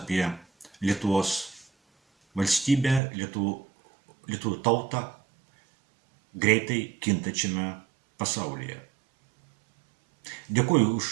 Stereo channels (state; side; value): drops out; left; at 3.0 s